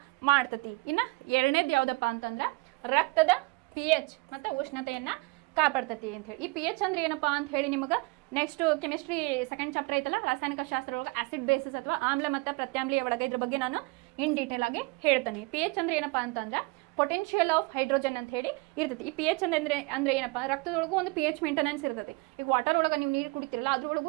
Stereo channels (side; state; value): left; quieter; 26.3 dB